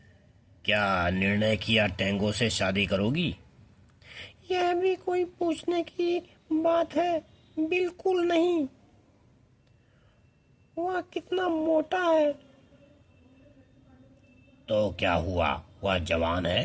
क्या निर्णय किया, टेंगो से शादी करोगी? यह भी कोई पूछने की बात है? बिल्कुल नहीं। वह कितना मोटा है। तो क्या हुआ, वह जवान है,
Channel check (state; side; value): identical; both; correlation 1.00